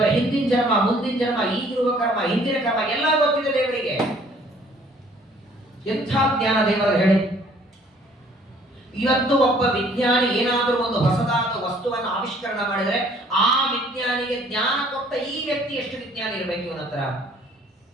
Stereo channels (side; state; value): both; normal; correlation 0.58